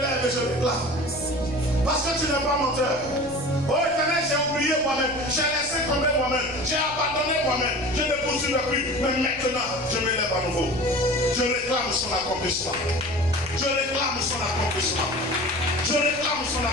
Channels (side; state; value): right; noise; rumble, 18 dB below the sound